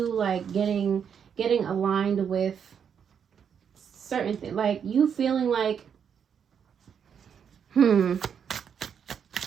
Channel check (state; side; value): quieter; left; 7.6 dB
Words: like getting aligned with certain things, like you feeling like